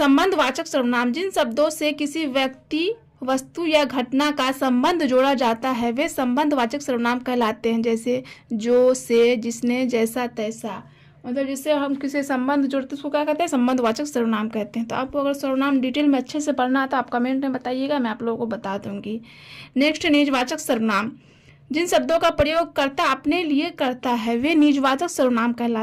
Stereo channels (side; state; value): both; identical; correlation 1.00